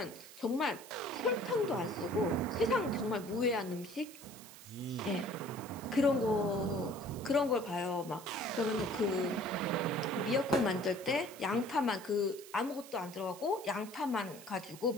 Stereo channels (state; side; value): noise; right; hiss, 17 dB below the sound